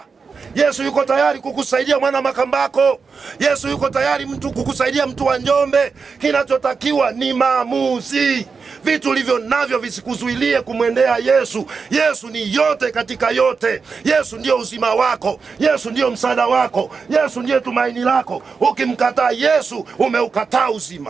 Yesu yuko tayari kukusaidia mwana Makambako. Yesu yuko tayari kukusaidia mtu wa Njombe. Kinachotakiwa ni maamuzi. Vitu ulivyo navyo visikuzuilie kumwendea Yesu. Yesu ni yote katika yote. Yesu ndio uzima wako. Yesu ndio msaada wako. Yesu ndiye tumaini lako. Ukimkataa Yesu, umeukataa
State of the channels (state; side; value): quieter; left; 5.1 dB